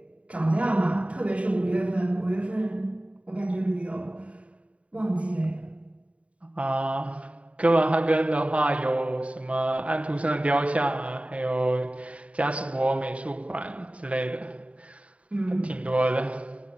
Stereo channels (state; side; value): late; left; 0.065 ms